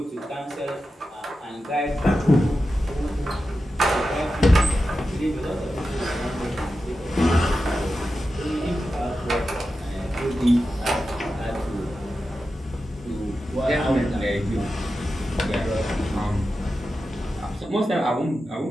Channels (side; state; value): both; normal; correlation 0.91